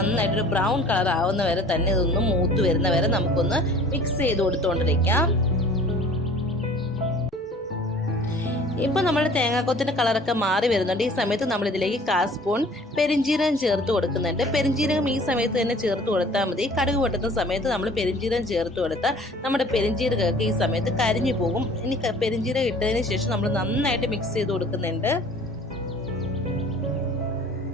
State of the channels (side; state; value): both; normal; correlation 0.49